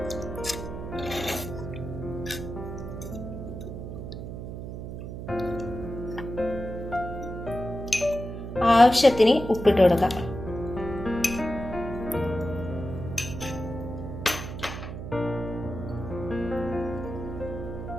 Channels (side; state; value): right; noise; hum, 8 dB below the sound